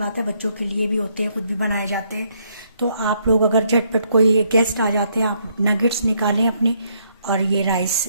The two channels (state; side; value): inverted; both; correlation -0.72